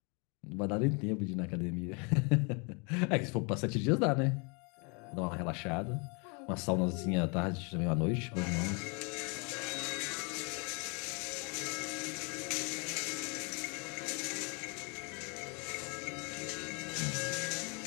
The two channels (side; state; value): right; quieter; 33.5 dB